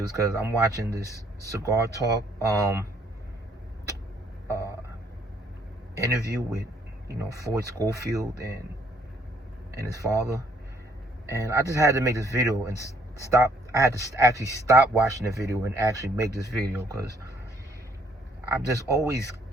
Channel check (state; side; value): normal; both; correlation 0.65